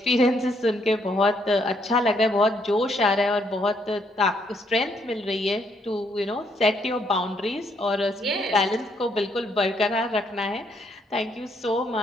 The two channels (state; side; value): normal; both; correlation 0.72